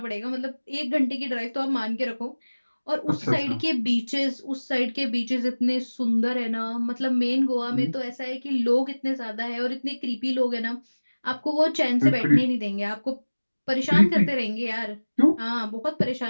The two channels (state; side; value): inverted; both; correlation -1.00